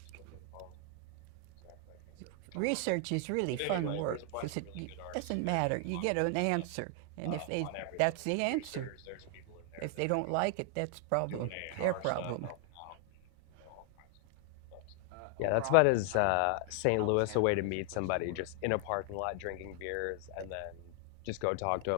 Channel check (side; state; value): both; different; correlation 0.00